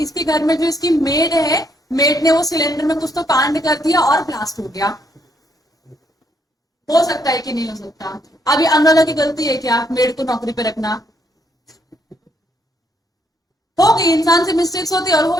घर में जो इसकी मेड है, मेड ने वो सिलेंडर में कुछ तो कांड कर दिया और ब्लास्ट हो गया। हो सकता है कि नहीं हो सकता, अभी अनुराधा की गलती है क्या मेड को नौकरी पे रखना, हो गई, इंसान से मिस्टेक्स होती है और हो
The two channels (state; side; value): normal; both; correlation 0.73